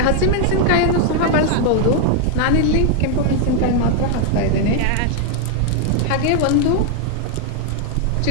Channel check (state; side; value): different; both; correlation 0.00